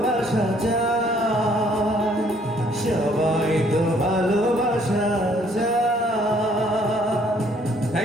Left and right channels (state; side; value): normal; both; correlation 0.63